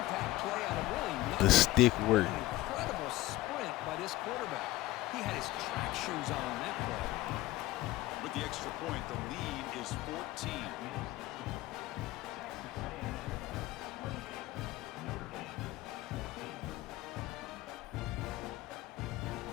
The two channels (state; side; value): quieter; right; 17.4 dB